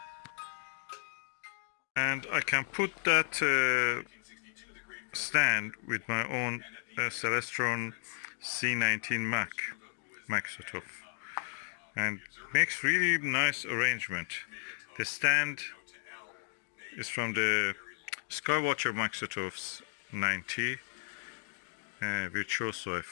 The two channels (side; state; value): right; silent; digital silence